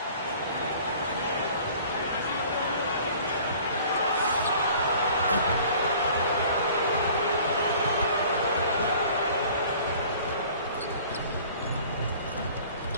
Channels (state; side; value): inverted; both; correlation -0.49